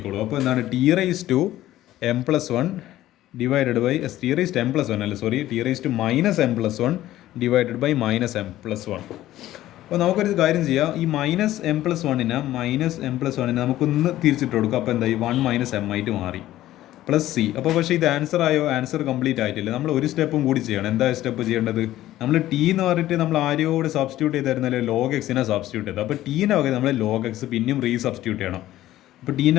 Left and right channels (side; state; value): right; quieter; 14.4 dB